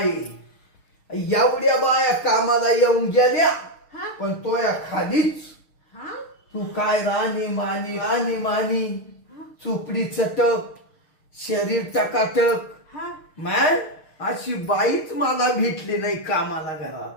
एवढ्या बाया कामाला येऊन गेल्या हा पण तो या खालीच हा तू काय राणी मानी चुपडी चटक शरीर टकाटक हा मॅन अशी बाईच मला भेटली नाही कामाला घरात.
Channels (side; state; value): right; late; 6.5 ms